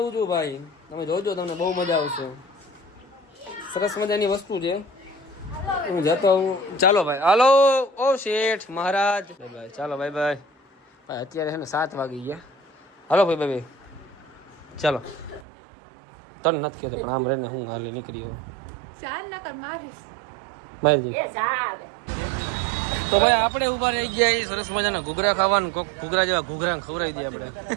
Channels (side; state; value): left; drops out; at 15.5 s